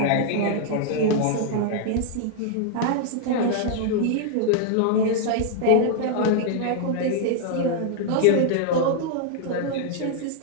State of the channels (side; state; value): both; different; correlation -0.01